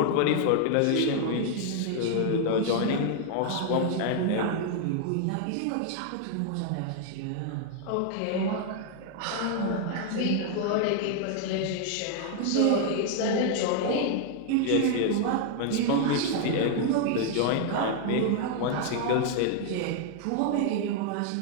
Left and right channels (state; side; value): different; both; correlation 0.00